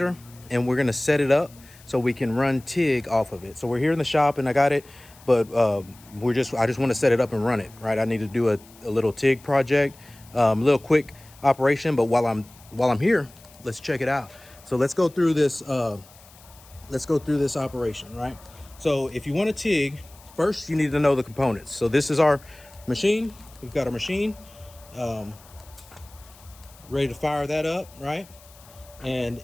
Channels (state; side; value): noise; left; hiss, 24 dB below the sound